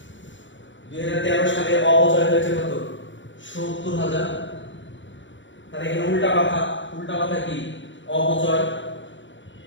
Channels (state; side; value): late; right; 0.54 ms